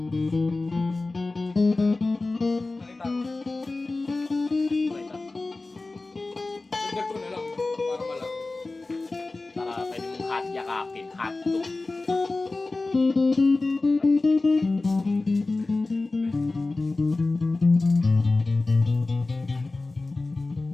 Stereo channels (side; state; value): right; quieter; 3.3 dB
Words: Nakita ko. Nakita. Dagdag ko na lang para malaki. Para pwede mong hot yakapin, hot dog.